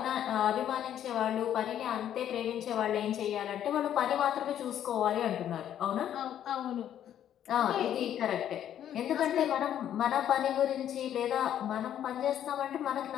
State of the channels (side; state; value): right; quieter; 10.5 dB